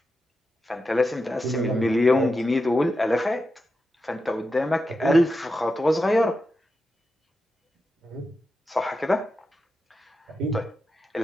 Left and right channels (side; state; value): both; normal; correlation 0.89